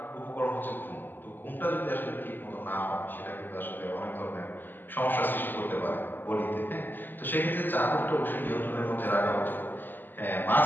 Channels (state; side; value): late; right; 0.091 ms